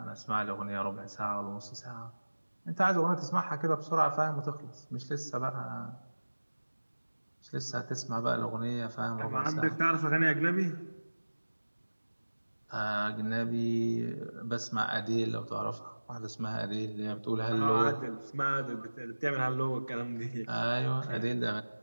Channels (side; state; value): both; inverted; correlation -1.00